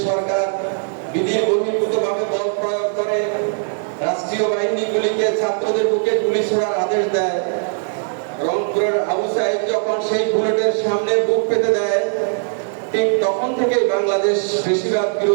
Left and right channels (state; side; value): silent; left; digital silence